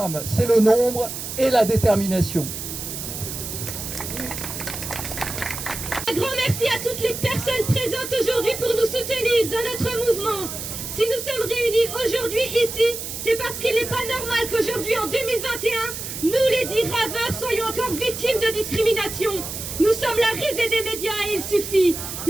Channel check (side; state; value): right; noise; hiss, 7 dB below the sound